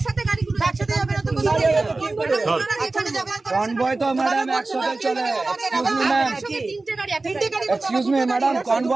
গাড়িগুলো একসাথে যাবে না তো কনভয় তো ম্যাডাম একসাথে চলে। এক্সকিউজ মি ম্যাডাম,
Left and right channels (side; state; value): left; quieter; 3.3 dB